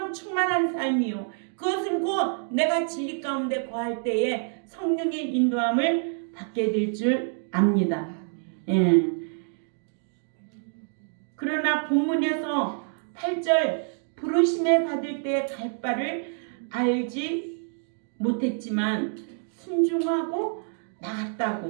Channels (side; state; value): left; silent; 60 dB below the other